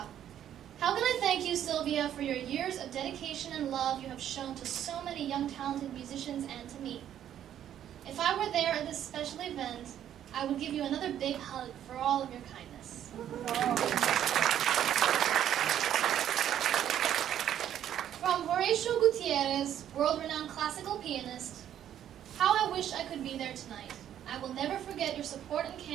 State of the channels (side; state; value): left; quieter; 10.6 dB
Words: How can I thank you, Sylvia, for your years of dedication and love you have shown to so many young talented musicians and to me? If I were there at this special event, I would give you another big hug for all of your kindness. From Horacio Gutiérrez, world-renowned classical pianist, how I wish I could be there tonight. I will never forget your support and